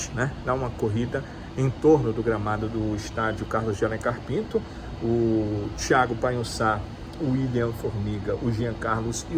né? Dar uma corrida em torno do gramado do estádio Carlos de Alencar Pinto. O Thiago Panhussá, o William Formiga, o Jean Carlos e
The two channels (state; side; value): identical; both; correlation 1.00